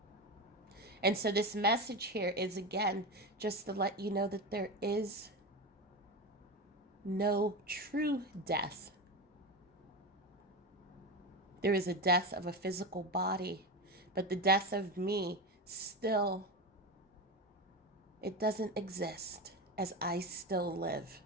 And so this message here is, again, just to let you know that there is no true death. There is a death of a physical body, but the death of me still, it doesn't exist, as I still live.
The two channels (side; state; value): both; normal; correlation 0.20